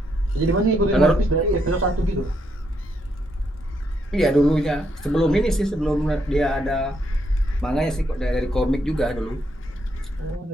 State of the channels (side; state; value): both; normal; correlation 0.76